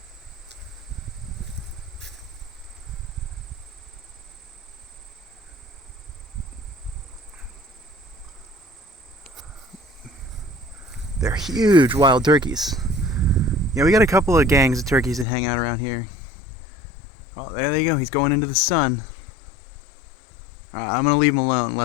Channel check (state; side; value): drops out; right; at 15.2 s